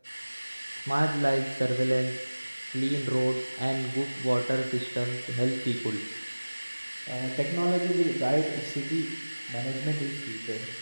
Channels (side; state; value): both; inverted; correlation -1.00